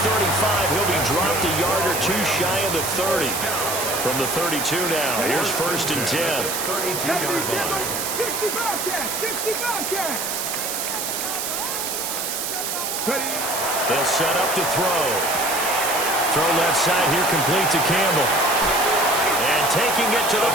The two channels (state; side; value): noise; right; hiss, 3 dB below the sound